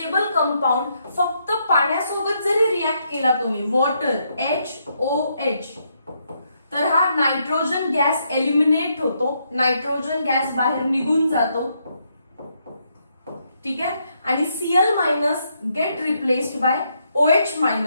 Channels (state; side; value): inverted; both; correlation -0.76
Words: कंपाऊंड फक्त पाण्यासोबत जरी रिॲक्ट केला तुम्ही, वॉटर HOH, तर हा नायट्रोजन गॅस एलिमिनेट होतो, नायट्रोजन गॅस बाहेर निघून जातो. ठीक आहे. आणि Cl- gate replaced by